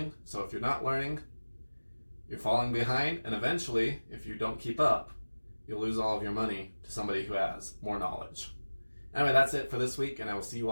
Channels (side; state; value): both; inverted; correlation -1.00